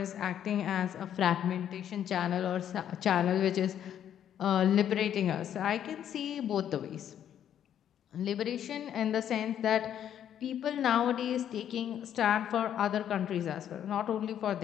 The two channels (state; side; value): quieter; right; 10.0 dB